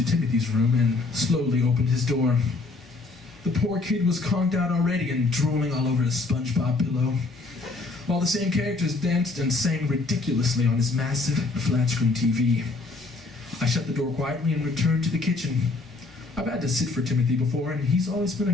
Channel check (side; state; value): right; quieter; 3.5 dB